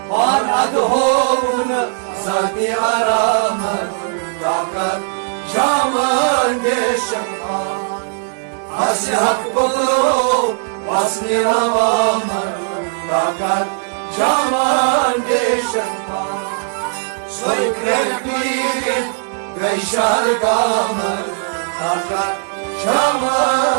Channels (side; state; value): left; silent; 68 dB below the other